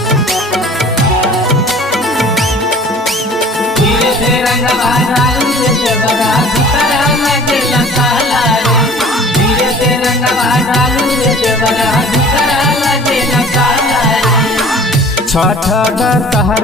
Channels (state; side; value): normal; both; correlation 0.47